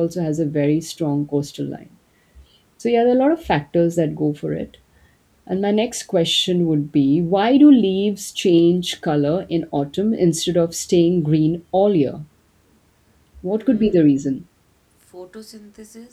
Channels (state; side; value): identical; both; correlation 1.00